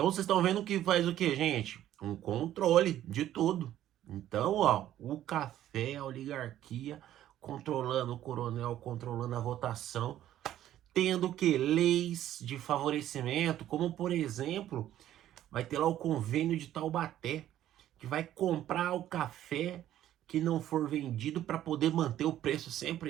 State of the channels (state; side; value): quieter; left; 12.4 dB